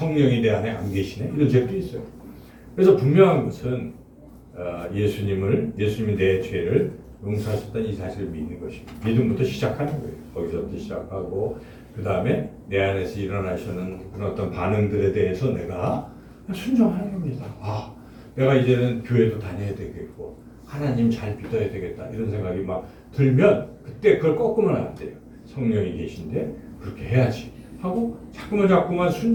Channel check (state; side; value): identical; both; correlation 1.00